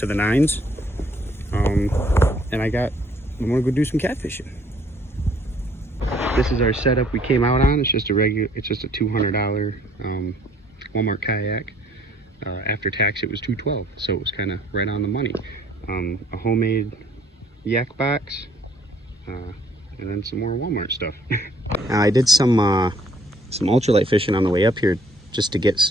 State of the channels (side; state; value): both; normal; correlation 0.62